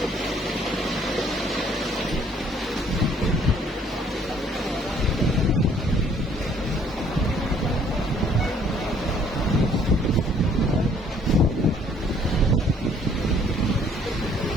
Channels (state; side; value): normal; both; correlation 0.61